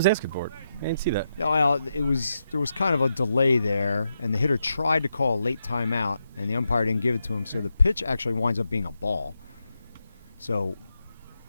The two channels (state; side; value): inverted; both; correlation -0.85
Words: asking for it. I didn't see that. No, well, there was kind of a delay there, and the hitter tried to call a late timeout, and the umpire didn't give it to him. So the pitch actually winds up being a ball. So,